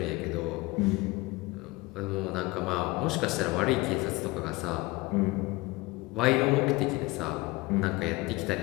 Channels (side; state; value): right; quieter; 22.0 dB